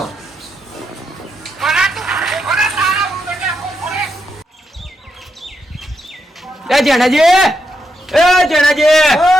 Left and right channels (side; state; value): both; normal; correlation 0.82